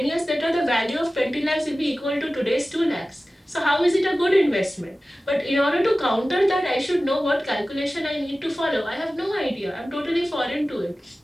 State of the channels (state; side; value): normal; both; correlation 0.96